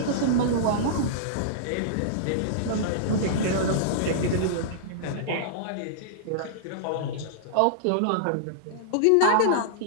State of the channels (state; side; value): different; both; correlation -0.02